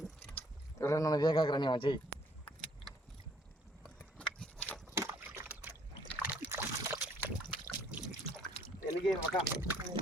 నన్ను వేగాకరని చెయ్యి. ఎలిగే మక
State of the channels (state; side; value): normal; both; correlation 0.62